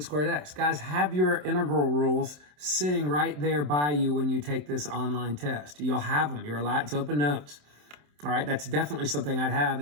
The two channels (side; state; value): left; late; 27 ms